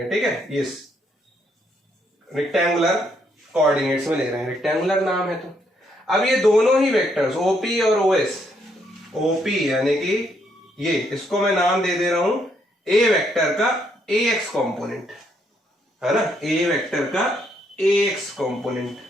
ठीक है, ये रेक्टेंगुलर कोऑर्डिनेट्स में ले रहे हैं, रेक्टेंगुलर नाम है। तो अब ये दोनों ही वेक्टर्स ओपी और ओएस, ओपी यानी कि ये, इसको मैं नाम दे दे रहा हूं ए वेक्टर का ए एक्स कॉम्पोनेंट, है ना, ए वेक्टर का ए एक्स कॉम्पोनेंट,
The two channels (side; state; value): both; normal; correlation 0.73